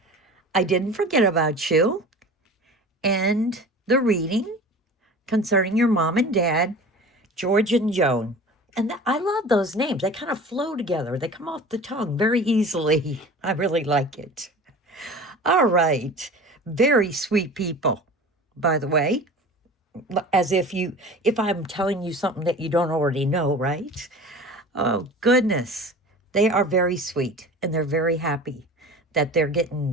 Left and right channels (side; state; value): both; normal; correlation 0.38